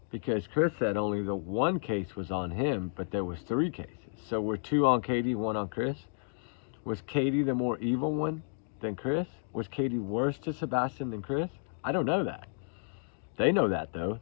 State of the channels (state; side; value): silent; right; digital silence